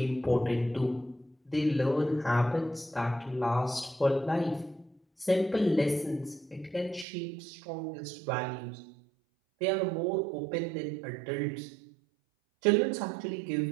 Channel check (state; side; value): drops out; left; at 7.1 s